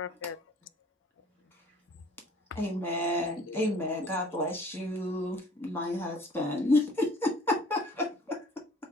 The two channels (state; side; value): normal; both; correlation 0.53